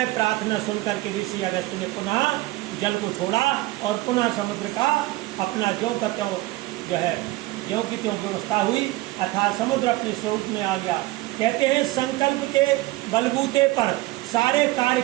प्रार्थना सुनकर के ऋषि अगस्त ने पुनः जल को छोड़ा और पुनः समुद्र का अपना ज्यों का त्यों जो है ज्यों की त्यों व्यवस्था हुई, अर्थात समुद्र अपने स्वरूप में आ गया। कहते हैं संकल्प के बलबूते पर सारे कार्य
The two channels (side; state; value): left; quieter; 19.3 dB